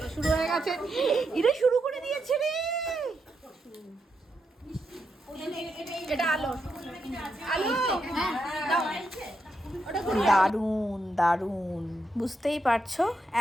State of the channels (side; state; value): both; normal; correlation 0.83